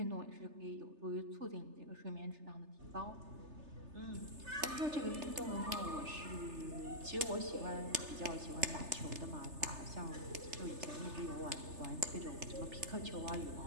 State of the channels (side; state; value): left; late; 3.3 ms